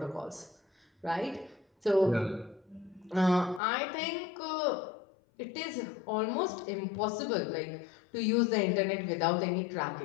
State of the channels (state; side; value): drops out; right; at 3.6 s